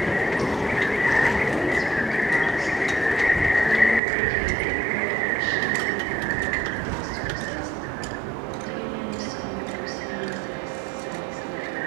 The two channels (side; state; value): left; drops out; at 4.0 s